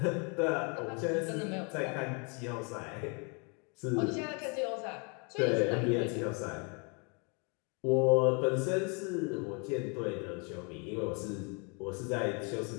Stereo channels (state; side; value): quieter; right; 34.4 dB